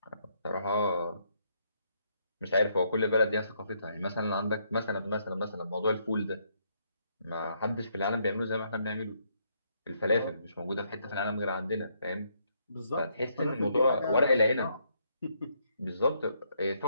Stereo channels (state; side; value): inverted; both; correlation -0.73